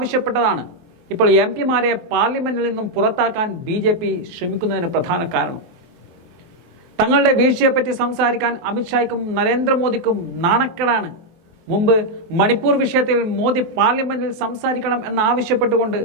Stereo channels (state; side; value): late; left; 23 ms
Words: ഇപ്പോൾ എംപിമാരെ പാർലമെന്റിൽ നിന്നും പുറത്താക്കാൻ ബി.ജെ.പി. ശ്രമിക്കുന്നതിന് പ്രധാന കാരണം. തങ്ങളുടെ വീഴ്ചയെപ്പറ്റി സംസാരിക്കാൻ അമിത്ഷായ്ക്കും നരേന്ദ്രമോദിക്കും നാണക്കേടാണ്. മുമ്പ് മണിപ്പൂർ വിഷയത്തിൽ മോദി പാർലമെന്റിൽ സംസാരിക്കണം എന്നാവശ്യപ്പെട്ടുകൊണ്ട്